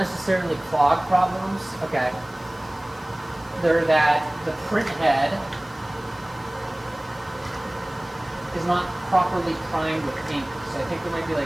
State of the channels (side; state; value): left; noise; hiss, 26 dB below the sound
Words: clog problems. Okay. They're that the print head is not properly primed with ink. So I think there might be